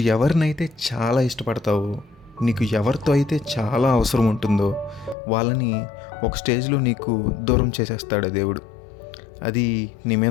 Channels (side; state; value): right; drops out; at 5.2 s